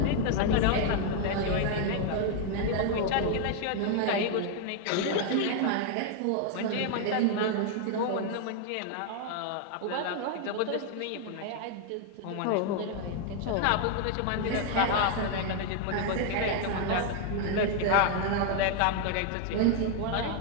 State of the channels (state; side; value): different; both; correlation 0.00